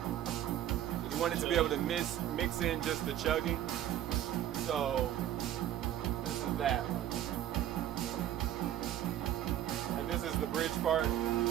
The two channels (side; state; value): left; quieter; 11.6 dB